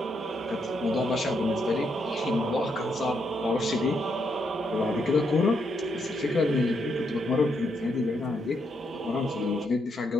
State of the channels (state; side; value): normal; both; correlation 0.78